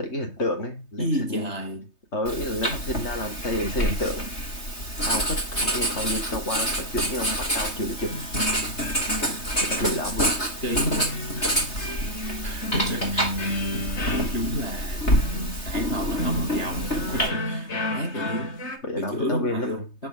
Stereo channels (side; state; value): right; late; 3.3 ms